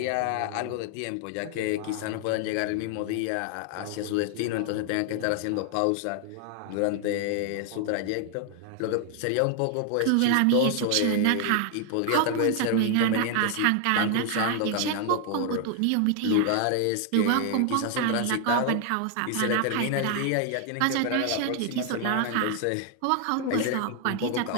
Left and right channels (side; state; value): both; different; correlation 0.00